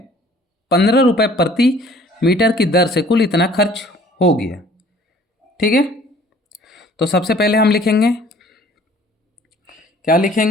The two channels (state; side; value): normal; both; correlation 0.54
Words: 15 रुपये प्रति मीटर की दर से कुल इतना खर्च हो गया। ठीक है। तो सबसे पहले हम लिखेंगे, क्या